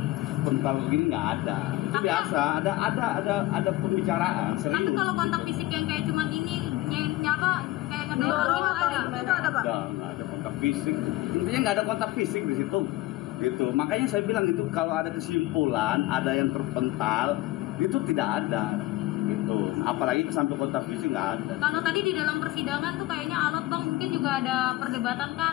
terpental begini, nggak ada. Itu biasa, ada pembicaraan serius. Tapi kalau kontak fisik yang kayak cuman ini, nyapa kayak ngedorong itu ada Pak? Nggak ada kontak fisik. Intinya nggak ada kontak fisik di situ. Gitu. Makanya saya bilang itu kalau ada kesimpulan, ada yang terpental, itu tidak ada. Gitu. Apalagi sampai kontak fisik nggak ada. Kalau tadi di dalam persidangan tuh kayaknya alot Bang, mungkin juga ada perdebatan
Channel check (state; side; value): quieter; right; 17.4 dB